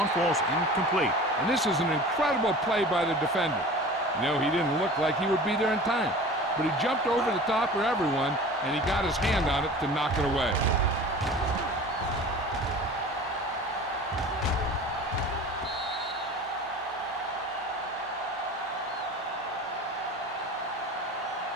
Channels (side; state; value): both; normal; correlation 0.39